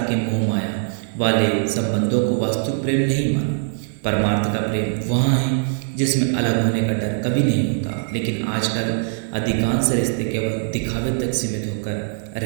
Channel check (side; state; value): left; silent; 65 dB below the other